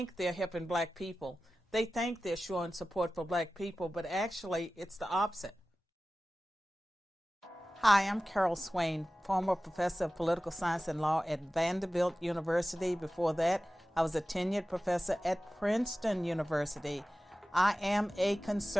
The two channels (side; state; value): both; normal; correlation 0.96